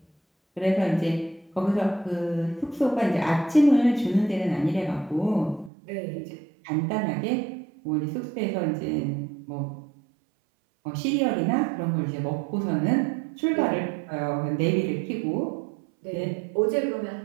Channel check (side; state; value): left; drops out; at 5.7 s